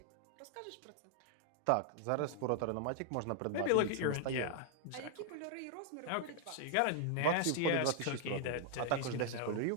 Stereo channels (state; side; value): different; both; correlation 0.00